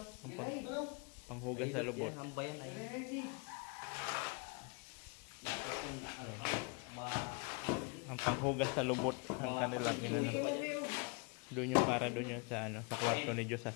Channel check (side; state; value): right; quieter; 32.1 dB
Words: Panghugas sa lubot. Hamba yan ay. Ang panghugas sa lubot ang kanilang inano. Doon yung para doon yung sa sa kwarto ni Diyos sa